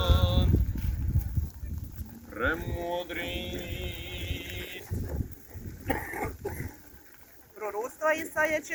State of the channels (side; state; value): both; identical; correlation 1.00